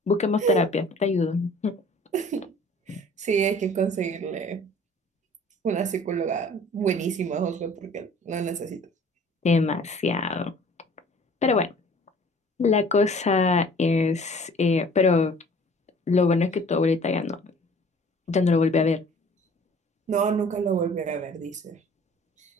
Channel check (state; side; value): normal; both; correlation 0.50